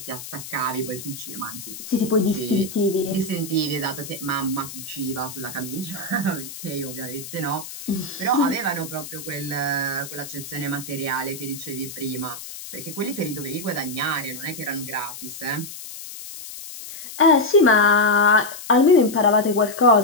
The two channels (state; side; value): noise; left; hiss, 12 dB below the sound